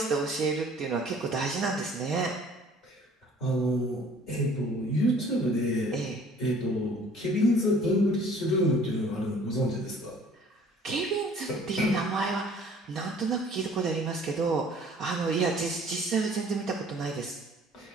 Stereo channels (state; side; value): normal; both; correlation 0.53